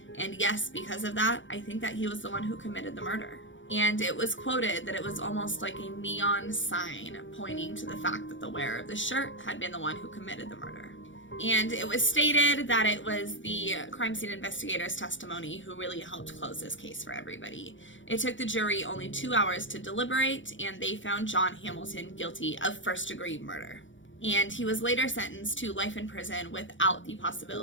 and yes, because of that, I think that he was the one who committed the murder. And it was quoted that it was almost like a neon sign pointing to the fact that the wearer of the shirt had been the one who committed the murder. And it was stated that it was the crime scene investigator's testimony who really helped close this case for everybody. It took the jury only 2 hours to deliberate, and they found John Hamilton guilty of first-degree murder. And he was later sentenced to life in prison without the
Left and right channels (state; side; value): late; right; 0.56 ms